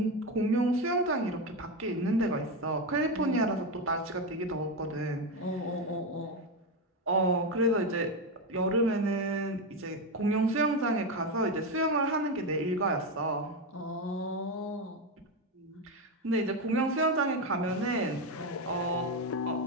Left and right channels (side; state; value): both; normal; correlation 0.12